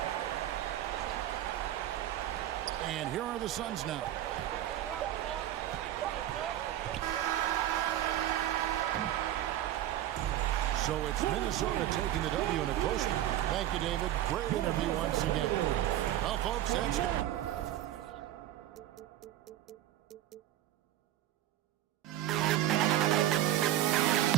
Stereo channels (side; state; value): left; quieter; 12.9 dB